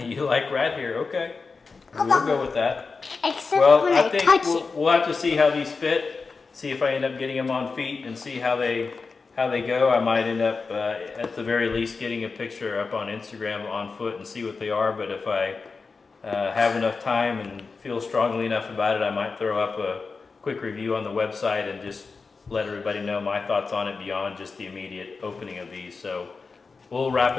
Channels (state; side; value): quieter; right; 4.5 dB